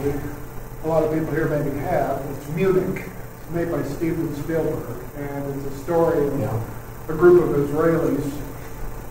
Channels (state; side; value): identical; both; correlation 1.00